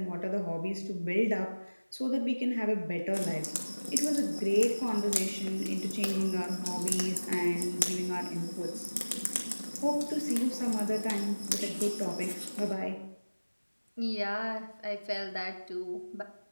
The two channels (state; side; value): inverted; both; correlation -1.00